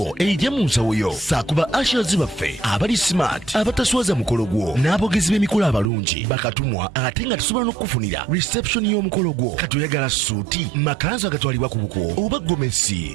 ejja mu nsawo yo saakuba ashers baffe abali smart abataswaza mukolo gwo n'abogezi b'emikolo abalungi bakatumwa ate nga tusobola n'okukufunira reception y'omukolo gwo katoyagala suuti makanzu agatwalibwa ku buko oba gomesi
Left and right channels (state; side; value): drops out; left; at 5.9 s